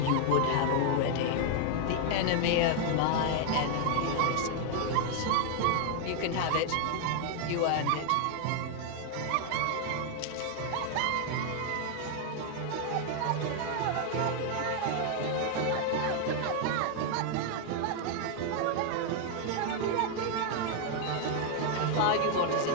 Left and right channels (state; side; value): different; both; correlation 0.00